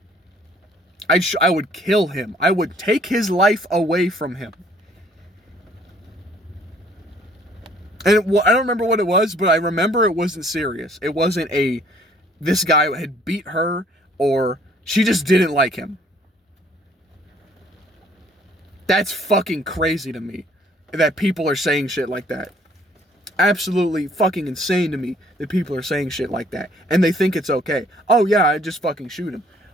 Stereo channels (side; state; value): both; normal; correlation 0.60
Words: I would kill him. I would take his life away from him. And I don't remember what it was, but I remember it wasn't serious. It wasn't this guy had beat her, or she just didn't like him. That's fucking crazy to me, that people are saying shit like that. Absolutely fucking insane to me that people are saying shit like that. And they think it's okay. Oh yeah, I'd just fucking shoot him.